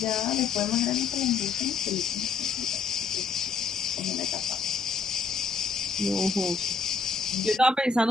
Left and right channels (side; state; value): right; quieter; 5.0 dB